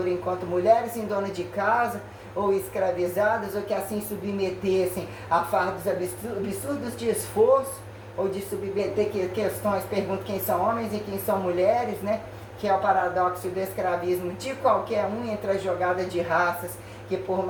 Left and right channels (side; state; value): both; identical; correlation 1.00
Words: enquanto mulheres em dona de casa, ou escravizadas, ou que assim submetessem a fardos absurdos de esforço, ou de submeter questões, pergunto quem são homens e quem são mulheres, né? Que é o paradoxo do escravismo de qualquer um entre a jogada de raças, que por